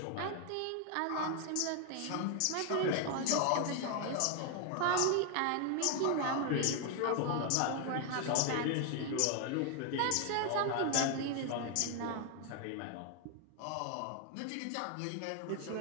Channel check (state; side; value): different; both; correlation 0.01